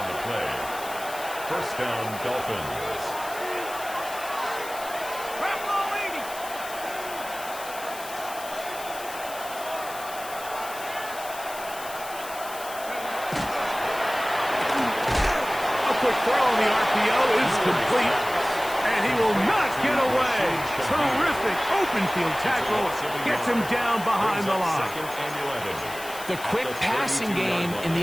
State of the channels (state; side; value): noise; left; hiss, 13 dB below the sound